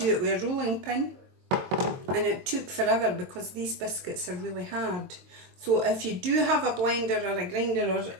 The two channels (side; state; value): left; late; 22 ms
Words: it with a rolling pin. And it took forever because these biscuits are really hard. So if you do have a blender or a grinder or